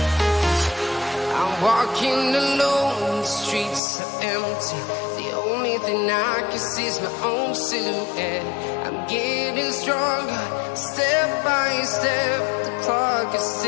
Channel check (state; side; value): drops out; right; at 3.8 s